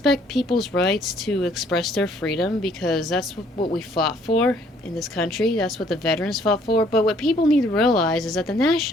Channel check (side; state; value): both; normal; correlation 0.62